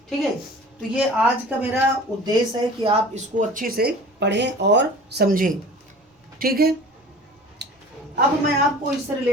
ठीक है। तो ये आज का मेरा उद्देश्य है कि आप इसको अच्छे से पढ़ें और समझें, ठीक है। अब मैं आपको इससे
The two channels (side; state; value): both; normal; correlation 0.42